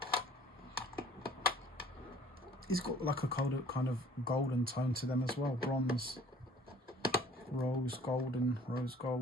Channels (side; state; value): both; normal; correlation 0.53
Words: It's got like a kind of golden tone to them as well. Bronze, rose gold.